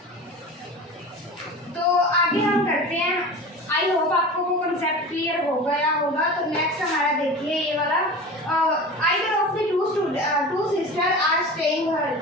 तो आगे हम करते हैं, आई होप आपको वो कंसेप्ट क्लियर हो गया होगा। तो नेक्स्ट हमारा देखिए ये वाला, either of the two sister are staying here,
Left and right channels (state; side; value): normal; both; correlation 0.33